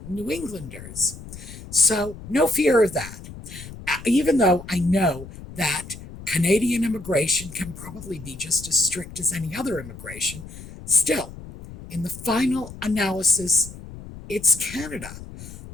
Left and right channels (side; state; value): left; noise; rumble, 14 dB below the sound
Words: New Englanders. So no fear of that. Even though I know that Canadian immigration can probably be just as strict as any other immigration, still, in the final analysis, it's Canada.